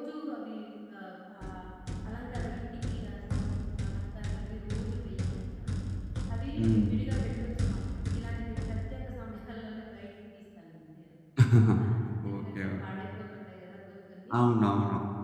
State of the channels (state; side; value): identical; both; correlation 1.00